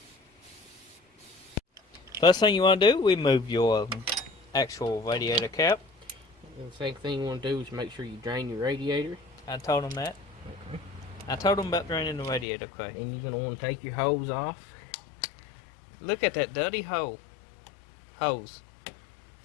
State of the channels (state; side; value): drops out; right; at 12.5 s